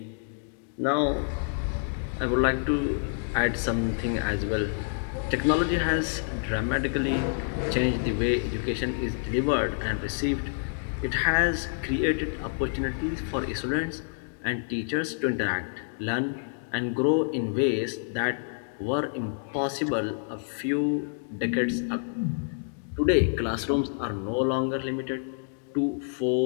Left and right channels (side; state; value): right; silent; digital silence